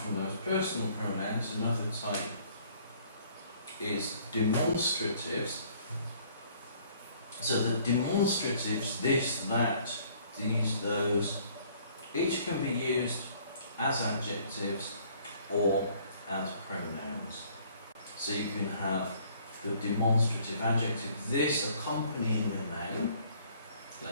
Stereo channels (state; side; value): inverted; both; correlation -0.59